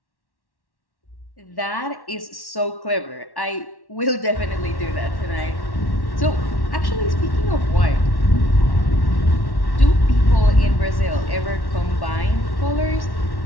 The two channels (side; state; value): right; late; 1.1 ms